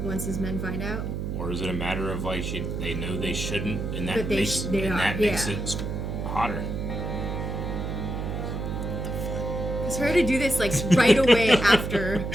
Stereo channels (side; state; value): right; noise; hum, 3 dB below the sound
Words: once his men find out. Or is it a matter of like they know they shouldn't, and that But they makes they are, makes yeah. it hotter? It's her to do this like right away after.